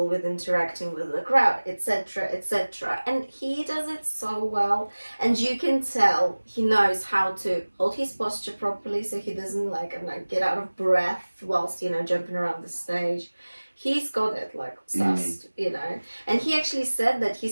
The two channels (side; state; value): both; inverted; correlation -1.00